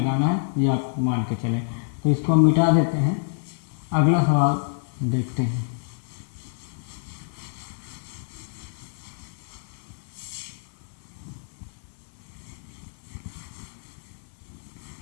है, ये आप मान के चलें। तो इसको हम मिटा देते हैं, अगला सवाल देखते हैं।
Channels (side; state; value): right; silent; 60 dB below the other